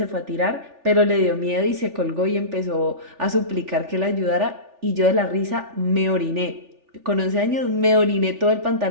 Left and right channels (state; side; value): late; left; 3.4 ms